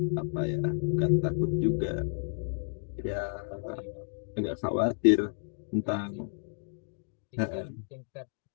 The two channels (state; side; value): silent; right; digital silence